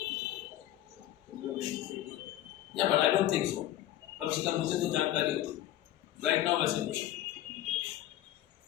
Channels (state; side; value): quieter; right; 13.2 dB